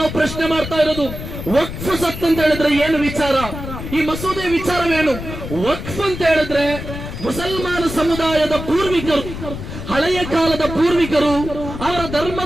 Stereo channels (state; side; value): noise; left; rumble, 8 dB below the sound